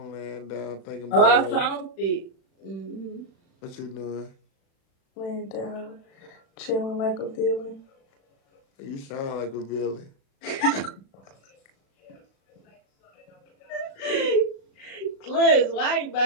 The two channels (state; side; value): late; right; 36 ms